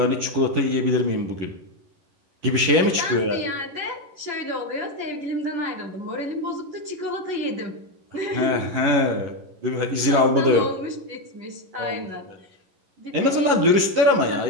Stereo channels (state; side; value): late; left; 10 ms